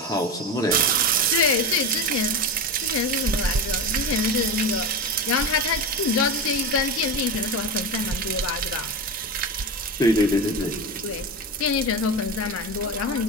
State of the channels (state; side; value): normal; both; correlation 0.21